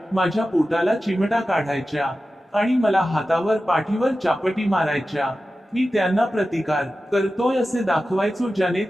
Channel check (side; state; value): both; normal; correlation 0.94